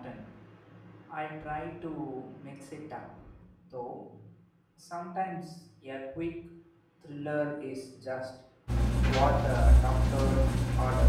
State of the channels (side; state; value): both; identical; correlation 1.00